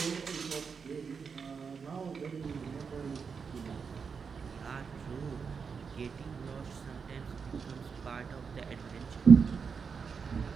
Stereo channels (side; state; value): left; quieter; 5.8 dB